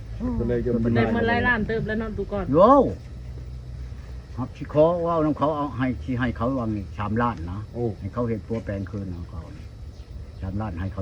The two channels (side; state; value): both; identical; correlation 1.00